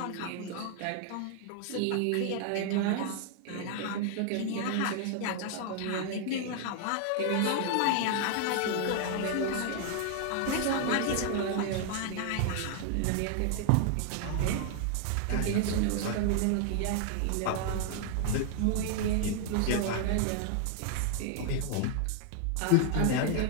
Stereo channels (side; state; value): both; different; correlation 0.00